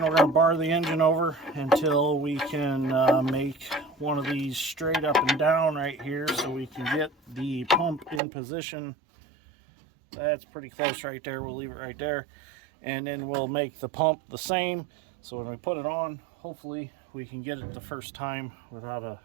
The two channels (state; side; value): drops out; left; at 8.2 s